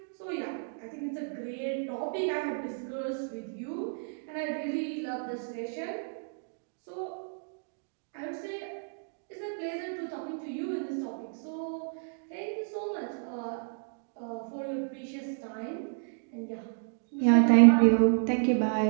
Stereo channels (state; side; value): silent; left; digital silence